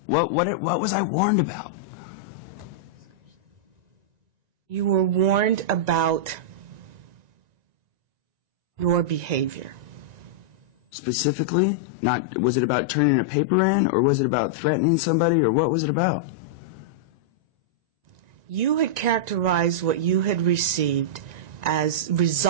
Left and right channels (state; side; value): late; left; 1.9 ms